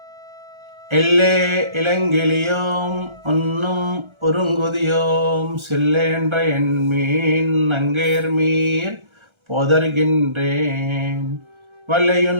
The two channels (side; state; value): left; late; 1.3 ms